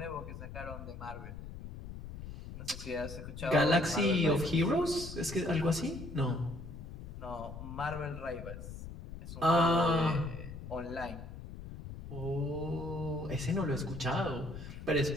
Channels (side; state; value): left; noise; rumble, 11 dB below the sound